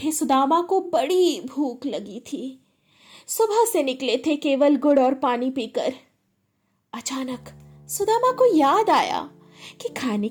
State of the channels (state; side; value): identical; both; correlation 1.00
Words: सुदामा को बड़ी भूख लगी थी। सुबह से निकले थे केवल गुड़ और पानी पीकर। अचानक सुदामा को याद आया कि खाने